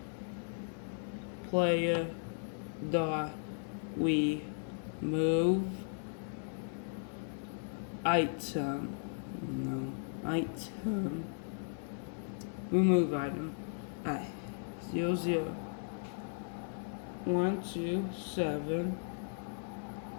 dot we move item. No, item. Remove item. Alright. 00127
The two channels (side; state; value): right; silent; digital silence